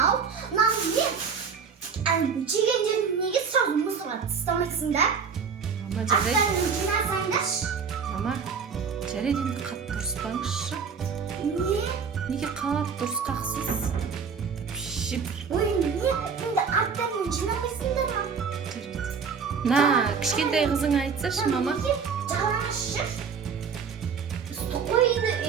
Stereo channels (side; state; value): left; quieter; 6.0 dB